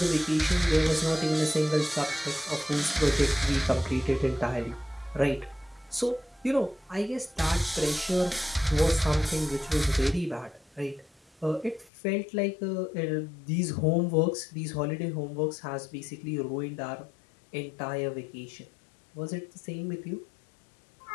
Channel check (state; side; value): drops out; right; at 11.9 s